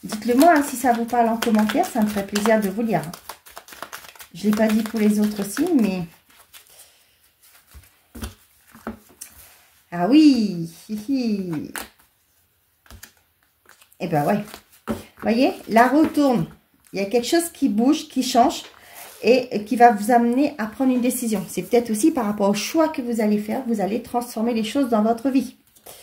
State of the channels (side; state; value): both; identical; correlation 1.00